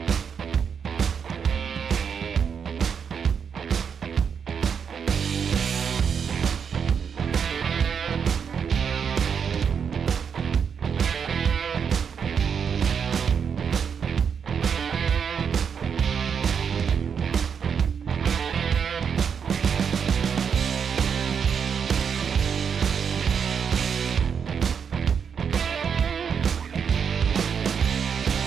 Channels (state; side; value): quieter; left; 6.9 dB